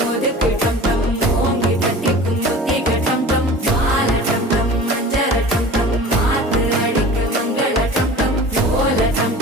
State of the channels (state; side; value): normal; both; correlation 0.39